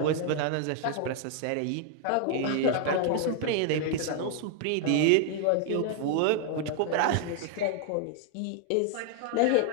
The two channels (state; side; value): different; both; correlation 0.00